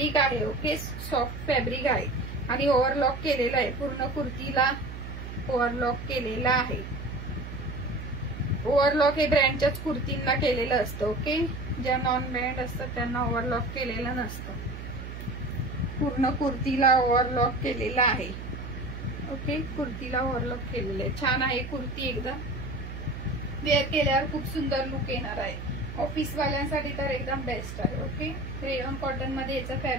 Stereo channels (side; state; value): right; noise; hum, 9 dB below the sound